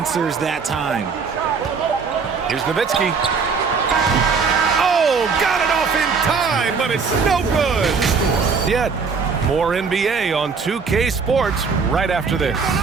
that time. Here's Nowitzki. Oh, got it off in time, but it's no good. Yet, more NBA on 2K Sports right after this.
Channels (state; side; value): quieter; left; 5.3 dB